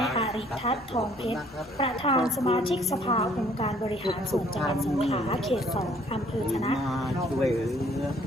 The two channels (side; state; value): both; normal; correlation 0.60